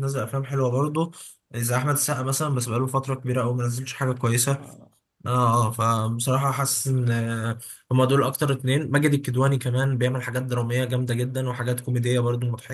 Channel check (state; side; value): identical; both; correlation 1.00